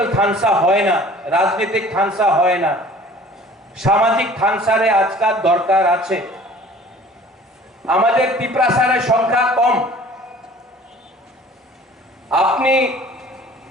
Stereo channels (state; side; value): normal; both; correlation 0.49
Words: থানসা হয় না রাজনৈতিক থানসা হয় না সামাজিক থানসারে আজকাল দরকার আছে আমাদের ত্রিপুরাসারের সংখ্যা কম আপনি